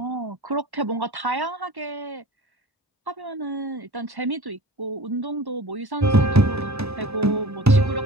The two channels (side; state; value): both; normal; correlation 0.39